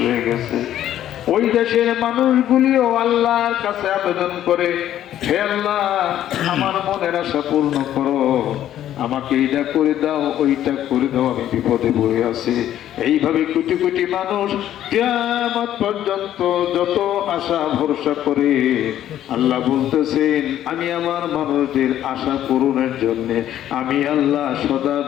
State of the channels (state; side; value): quieter; right; 11.7 dB